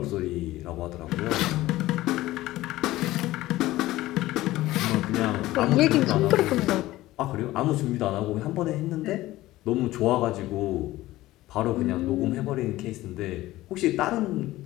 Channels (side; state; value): right; quieter; 16.8 dB